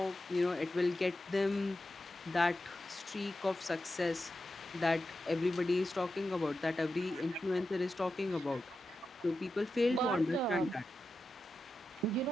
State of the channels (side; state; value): both; normal; correlation 0.90